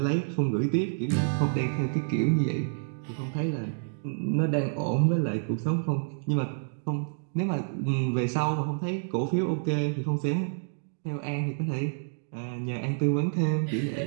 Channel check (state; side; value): silent; left; digital silence